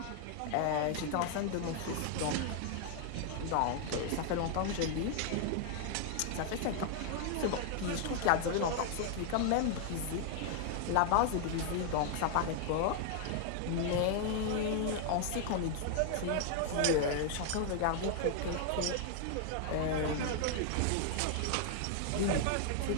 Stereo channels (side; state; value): both; different; correlation 0.00